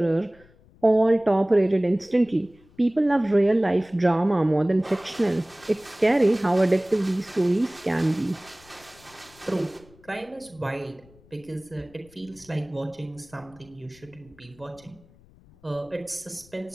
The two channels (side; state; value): left; noise; rumble, 27 dB below the sound